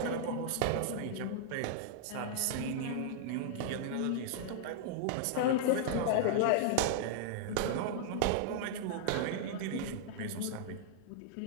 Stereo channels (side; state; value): both; different; correlation -0.02